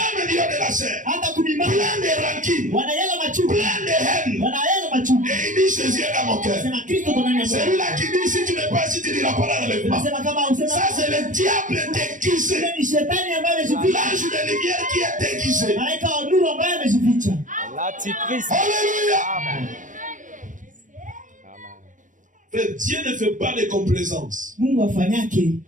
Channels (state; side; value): late; left; 0.37 ms